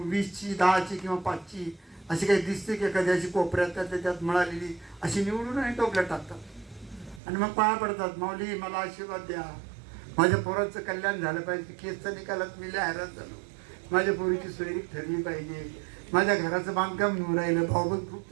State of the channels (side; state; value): left; drops out; at 7.2 s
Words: 20ची, 10ची किंवा 5ची अशी काही दिसते की एखाद्याची कोपऱ्यात त्यात मिळालेली अशी निवडून आणि टोपल्यात टाकतात आणि मग पाया पडतात, माऊली मला आशीर्वाद द्या, माझ्या पोराचं कल्याण झालं पाहिजे, केसच्या निकालात मी लय हैराण झालो, माझ्या पोरीची सोयरीक ठरली पाहिजे, माझ्या घराचं बांधकाम निवडून राहिलं, भाऊबंद खूप